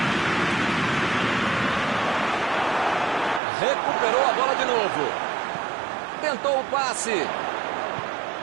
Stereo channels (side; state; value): left; drops out; at 3.4 s